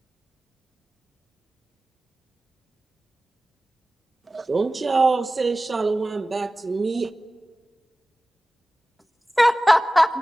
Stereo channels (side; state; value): both; normal; correlation 0.97